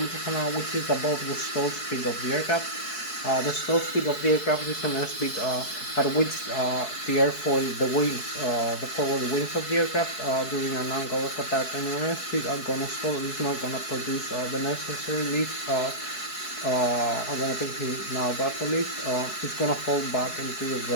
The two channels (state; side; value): late; right; 4.7 ms